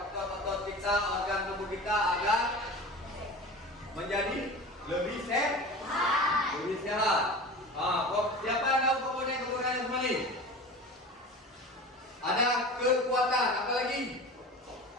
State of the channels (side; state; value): both; normal; correlation 0.34